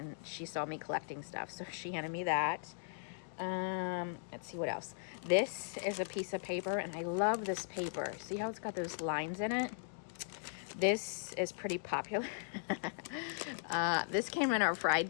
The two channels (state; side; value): silent; right; digital silence